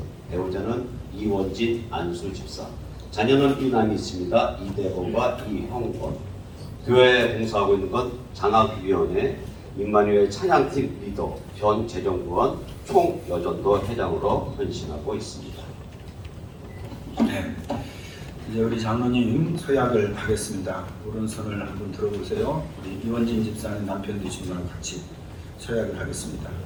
배우자는 이원진 안수 집사, 자녀는 이남이 있습니다. 이대범과 이형권. 교회에 봉사하고 있는 건 장학위원회, 임마누엘 찬양팀 리더, 전 재정부원, 총여전도 회장으로 헌신하고 있습니다. 네, 이제 우리 장로님 서약을 하겠습니다. 오른손을 한번 들어보세요. 우리 이원진 집사님 남편 되신 분과 같이 서약을 하겠습니다.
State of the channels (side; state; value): both; identical; correlation 1.00